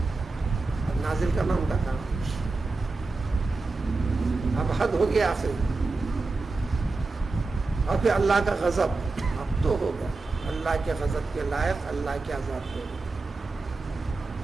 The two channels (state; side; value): quieter; left; 3.7 dB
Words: اب نازل کرنا ان کا کام، اب حد ہو گیا آخری، اور پھر اللہ کا غضب اب تو ہوگا، اللہ کے غضب کے لائق اللہ کے عذاب ہوگا۔